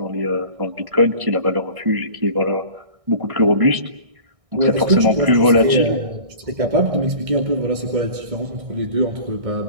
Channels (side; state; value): left; late; 1.6 ms